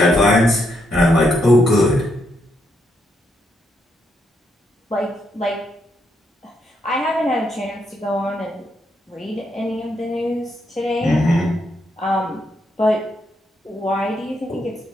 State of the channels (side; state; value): both; normal; correlation 0.78